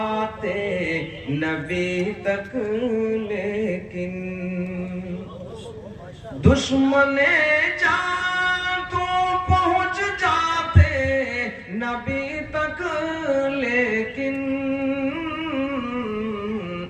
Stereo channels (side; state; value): both; identical; correlation 1.00